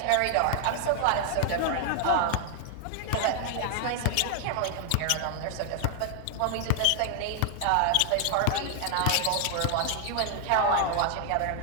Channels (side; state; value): both; different; correlation 0.00